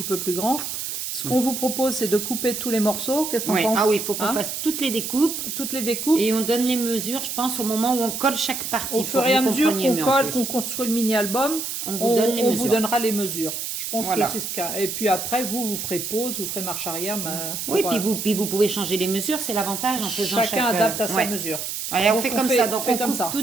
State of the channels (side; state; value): right; noise; hiss, 5 dB below the sound